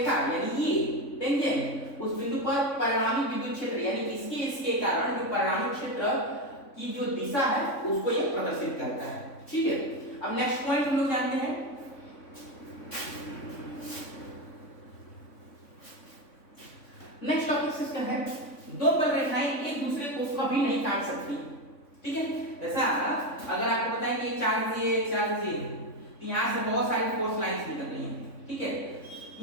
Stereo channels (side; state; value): right; late; 3.5 ms